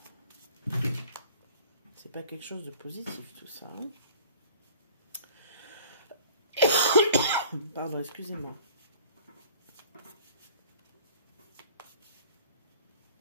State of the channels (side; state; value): both; inverted; correlation -0.49